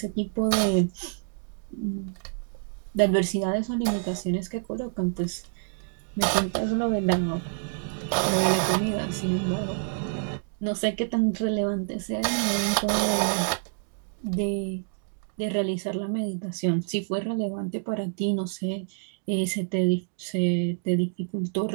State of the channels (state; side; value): silent; left; digital silence